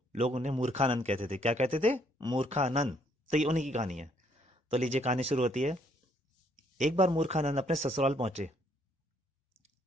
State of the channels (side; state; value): both; normal; correlation 0.68